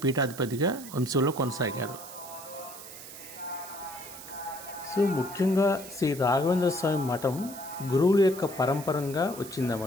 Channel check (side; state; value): right; noise; hiss, 14 dB below the sound